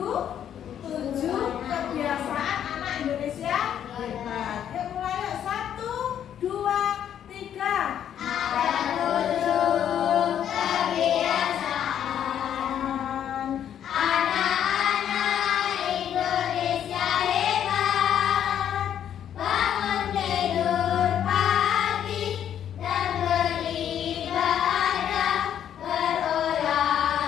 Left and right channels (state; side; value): quieter; right; 9.8 dB